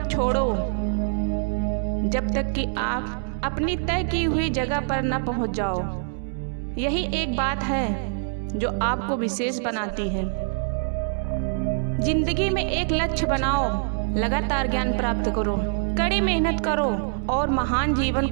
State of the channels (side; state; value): left; silent; digital silence